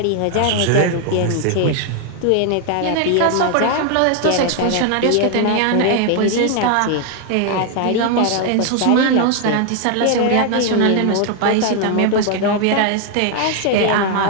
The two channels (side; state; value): both; different; correlation 0.01